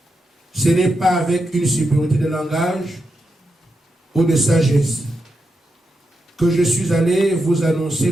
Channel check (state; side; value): normal; both; correlation 0.86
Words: ce n'est pas avec une supériorité de langage ou de sagesse que je suis allé vous annoncer